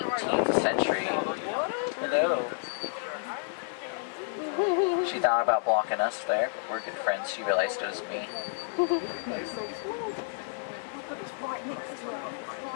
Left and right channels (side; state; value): right; silent; digital silence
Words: century. Hello. She thought about blocking us there, but we're good friends. She realized it was me.